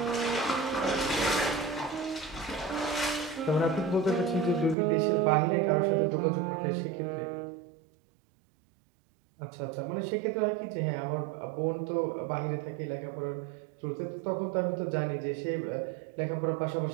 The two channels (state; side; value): drops out; left; at 4.8 s